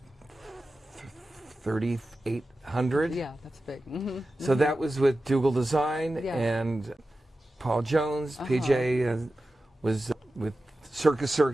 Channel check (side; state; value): both; normal; correlation 0.94